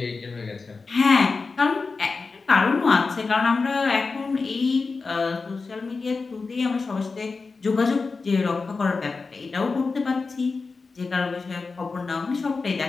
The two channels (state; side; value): quieter; right; 4.3 dB